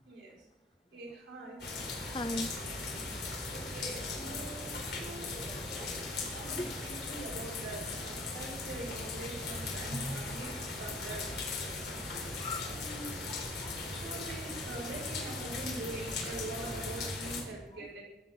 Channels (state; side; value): normal; both; correlation 0.50